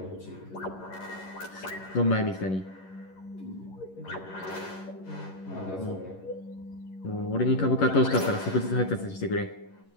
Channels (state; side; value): late; right; 11 ms